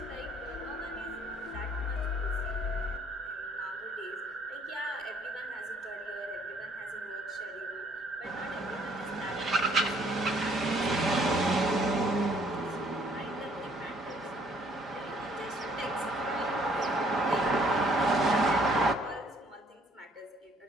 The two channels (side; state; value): both; normal; correlation 0.62